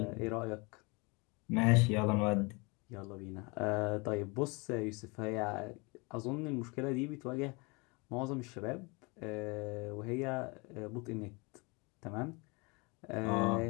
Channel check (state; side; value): quieter; right; 28.4 dB